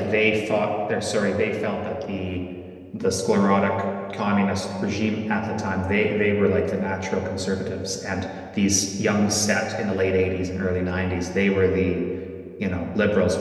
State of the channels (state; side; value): identical; both; correlation 1.00